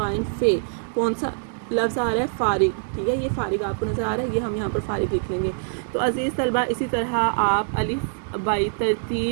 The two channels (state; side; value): silent; left; digital silence